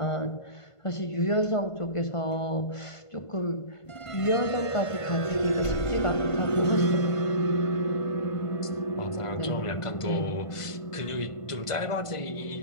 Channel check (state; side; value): late; right; 1.5 ms